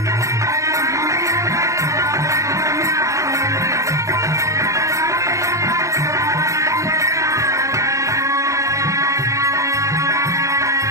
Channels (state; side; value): late; left; 0.15 ms